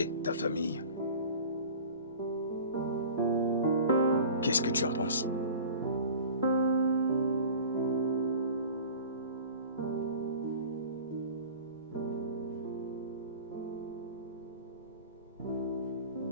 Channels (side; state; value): both; inverted; correlation -0.41